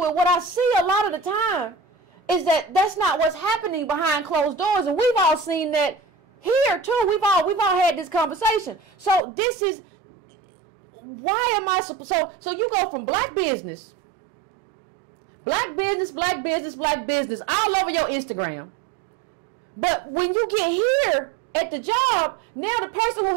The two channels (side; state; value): left; drops out; at 9.2 s